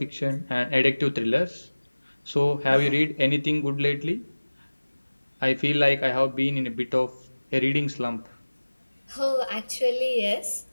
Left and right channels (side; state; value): both; inverted; correlation -1.00